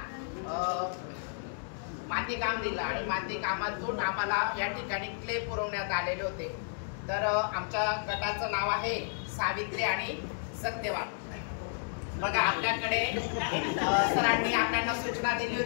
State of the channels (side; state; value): right; silent; digital silence